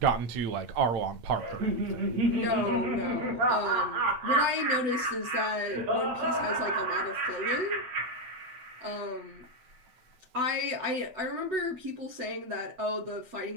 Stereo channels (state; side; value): late; left; 8.0 ms